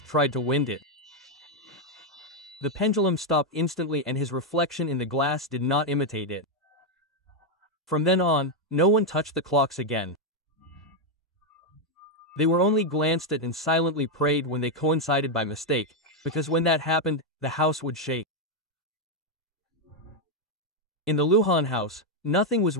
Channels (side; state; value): both; normal; correlation 0.02